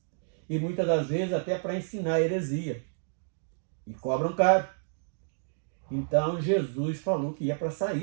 e muitas das vezes até para ensinar heresia, e cobram caro. Então Jesus falou que ia para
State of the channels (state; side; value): silent; left; digital silence